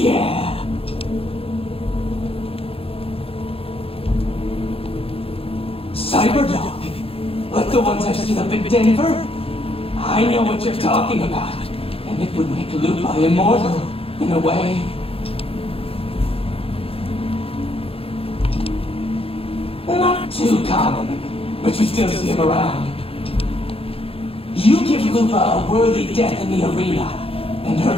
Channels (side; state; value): right; late; 0.27 ms